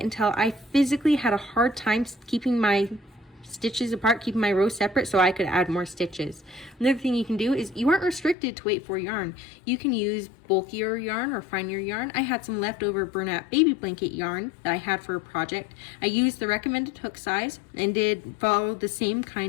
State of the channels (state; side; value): drops out; right; at 8.3 s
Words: until I physically had a hard time keeping my stitches apart, keeping my rows separate so I could add more stitches. Another thing you can do is you aren't restricted to weight for yarn. You can use bulkier yarn or finer yarn. I had some leftover Bernat baby blanket yarn that I had for a project. I used the recommended hook size and did follow the same